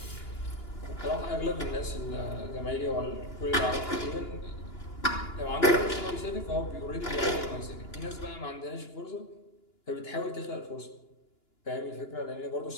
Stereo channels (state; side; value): late; right; 2.9 ms